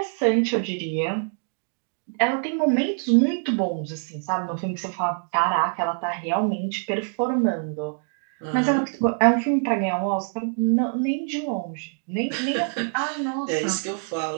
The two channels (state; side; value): silent; left; 56 dB below the other